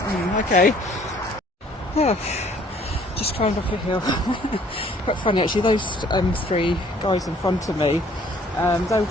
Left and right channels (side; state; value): both; normal; correlation 0.58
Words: okay. Oh, just climbed up a hill. Quite funny actually. Those three guys in front of me, they were